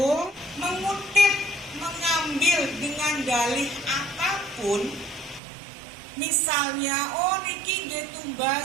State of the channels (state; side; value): drops out; left; at 5.4 s